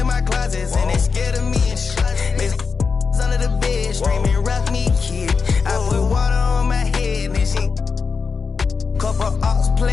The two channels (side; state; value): right; quieter; 5.2 dB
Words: my closets and they scared of me and shit. Under the bed, screaming, rock me, kid. I put water on my head and she couple ox